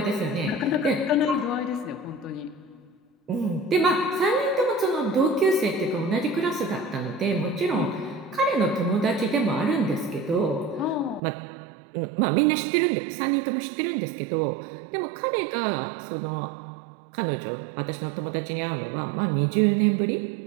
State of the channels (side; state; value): left; drops out; at 11.2 s